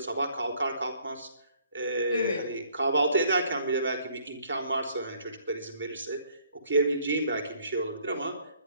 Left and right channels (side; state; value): both; inverted; correlation -0.62